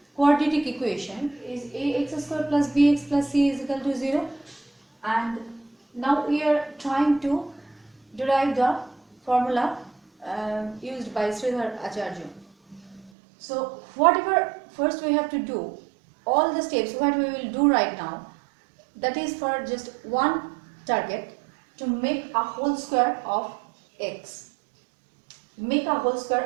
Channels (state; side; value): drops out; left; at 13.1 s